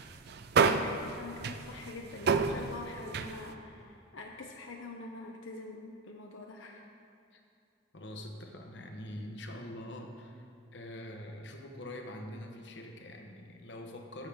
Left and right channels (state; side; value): quieter; left; 3.6 dB